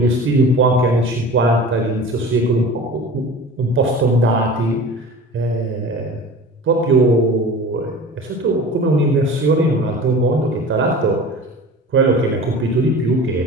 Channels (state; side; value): normal; both; correlation 0.37